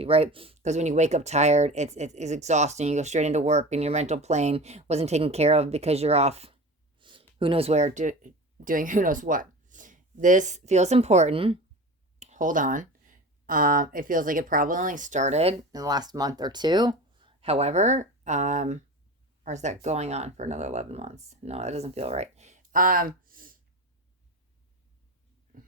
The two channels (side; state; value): both; normal; correlation 0.32